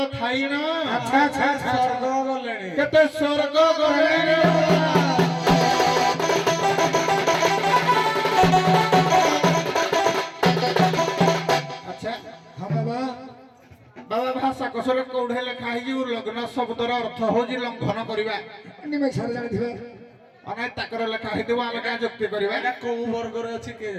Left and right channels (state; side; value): identical; both; correlation 1.00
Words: थाई न अच्छा अच्छा स्वर्ग गलेणी केते स्वर्ग गलेणी अच्छा हां बाबा बाबा भाषा कसरे कोढे लेखा है कि लग्न शब्दर अर्थ हो जी लंघन करबा निमे छार जानि थिबे અને તાકર લેખા ହେଇଥିବ ଆମେ କାଁ ଯୁକ୍ତି କରିବା ଏଇଟା କୋଉ ବର୍ଗରେ ଅଛି କିଏ